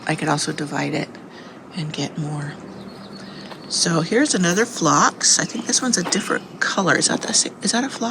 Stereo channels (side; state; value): both; identical; correlation 1.00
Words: I could also divide it and get more. So here's another phlox. I think this one's a different color. Is that a